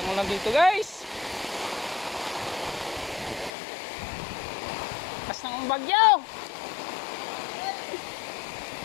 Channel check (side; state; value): right; drops out; at 3.5 s